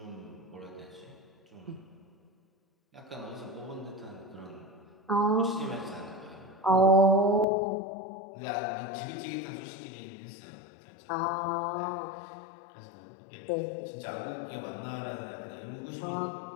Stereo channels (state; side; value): drops out; right; at 7.5 s